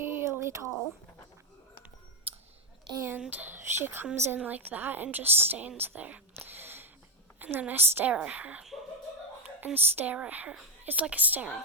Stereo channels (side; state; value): both; normal; correlation 0.03